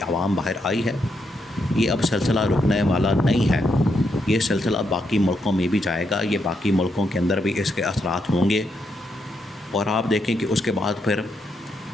عوام باہر آئی ہے، یہ اب سلسلہ رکنے والا نہیں ہے، یہ سلسلہ باقی ملکوں میں بھی جائے گا، یہ باقی ملکوں کے اندر بھی اس کے اثرات ہوں گے، اور آپ دیکھیں کہ اس کے بعد پھر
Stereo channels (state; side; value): normal; both; correlation 0.79